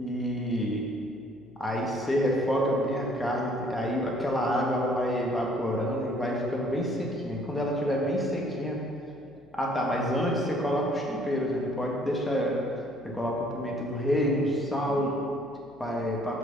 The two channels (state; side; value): noise; left; hum, 29 dB below the sound